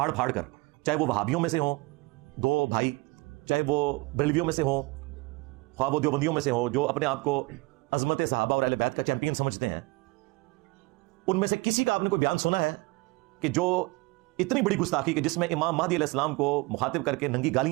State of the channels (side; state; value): left; quieter; 24.6 dB